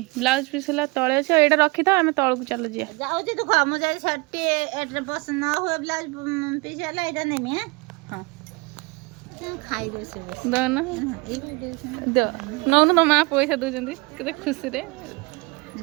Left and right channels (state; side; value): quieter; left; 26.4 dB